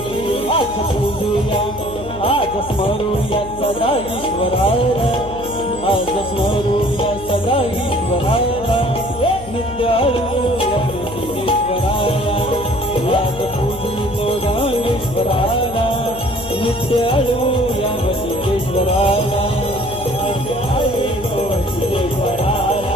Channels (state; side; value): noise; left; hum, 14 dB below the sound